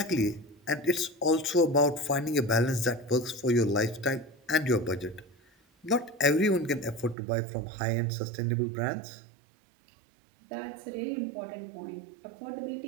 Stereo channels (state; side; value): drops out; left; at 7.2 s